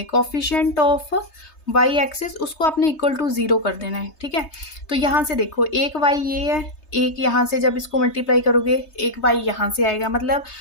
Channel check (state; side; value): late; right; 3.2 ms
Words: कॉफिशिएंट ऑफ वाई एक्सिस, उसको आपने इक्वल टू 0 कर देना है। ठीक है, तो यहाँ से देखो एक वाई ये है, एक यहाँ से जब इसको मल्टीप्लाई करोगे एक वाई यहाँ से आएगा, मतलब